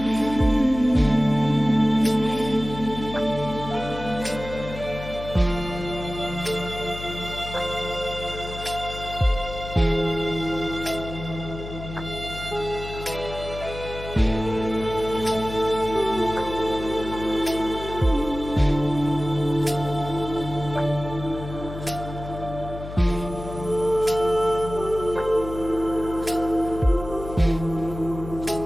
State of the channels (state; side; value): noise; left; hum, 10 dB below the sound